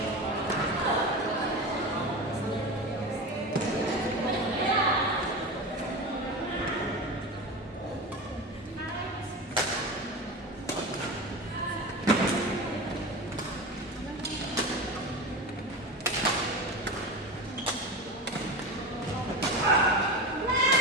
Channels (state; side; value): normal; both; correlation 0.26